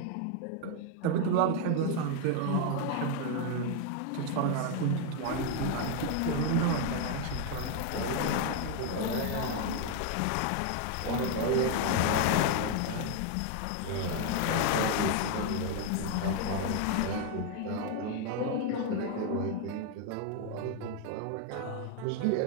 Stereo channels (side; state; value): both; different; correlation 0.01